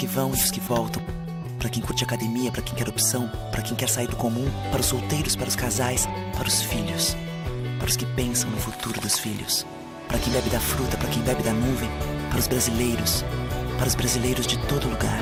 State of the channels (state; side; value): identical; both; correlation 1.00